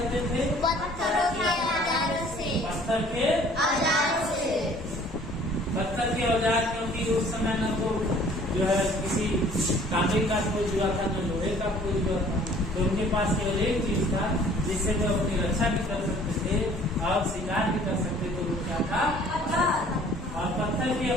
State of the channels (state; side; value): normal; both; correlation 0.54